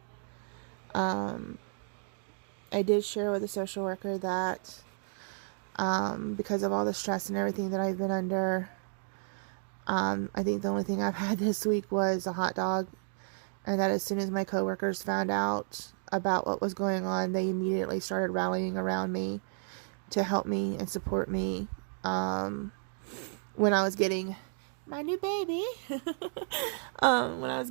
I did share with a social worker that because of all the stress and everything that I've been under, I think the only thing I've had this week was a hot dog, and that as soon as my coworkers found out about what was going on, they immediately started rallying around me to help me and support me when I was getting my new baby.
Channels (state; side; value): silent; left; 56 dB below the other